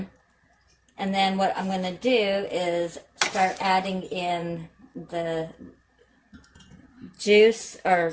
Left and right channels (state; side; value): identical; both; correlation 1.00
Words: And then what I'm going to do is start adding in the juice, or,